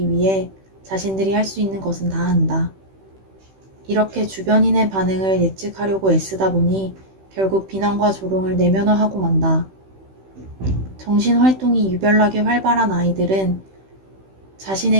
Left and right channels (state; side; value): late; left; 16 ms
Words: 위해 자신들이 할 수 있는 것은 다 한다. 이렇게 주변인의 반응을 예측하려고 애쓰다 보니 결국 비난과 조롱을 내면화하고 만다. 정신활동이 유별나게 활발한 아이들은